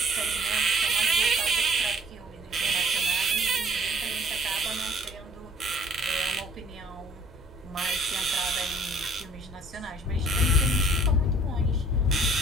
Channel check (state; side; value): normal; both; correlation 0.56